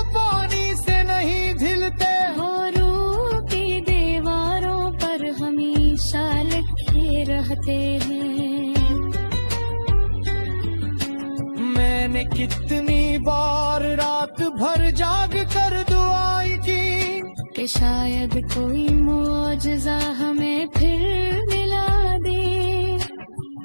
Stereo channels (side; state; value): both; inverted; correlation -1.00